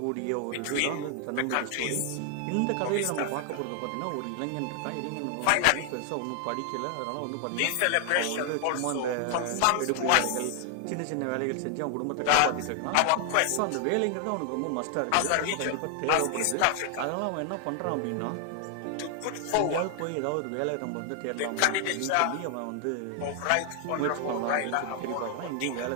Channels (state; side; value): different; both; correlation 0.00